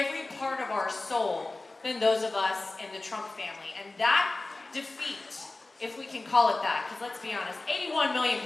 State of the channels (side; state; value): right; quieter; 3.1 dB